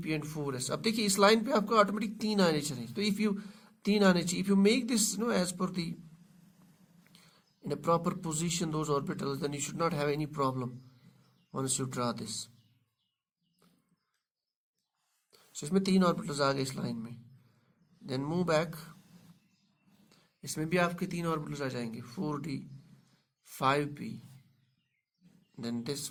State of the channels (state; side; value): identical; both; correlation 1.00